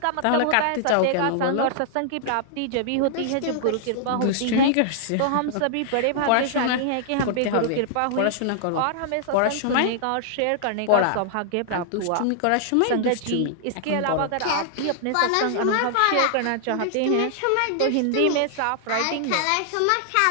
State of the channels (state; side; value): different; both; correlation -0.01